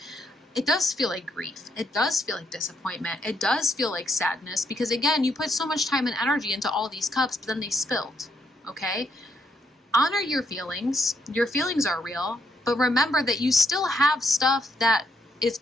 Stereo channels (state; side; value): normal; both; correlation 0.76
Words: It does feel like grief. It does feel like disappointment. It does feel like sadness because, again, you put so much time and energy into all these cups, but then they spilled, okay? Honor your feelings. Your feelings are real, but remember that you still have stuff that is